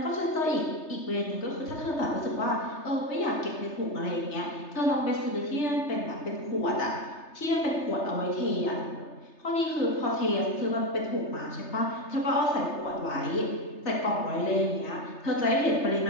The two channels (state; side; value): late; right; 3.3 ms